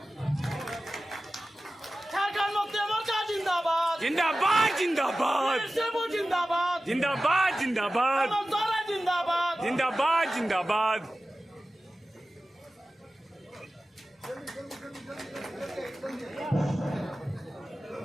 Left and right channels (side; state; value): both; normal; correlation 0.95